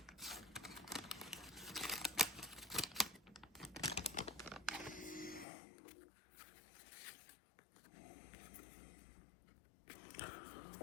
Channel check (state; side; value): drops out; right; at 5.5 s